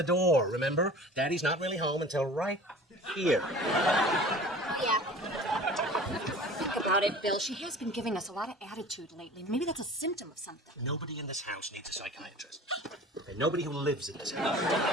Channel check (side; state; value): both; normal; correlation 0.42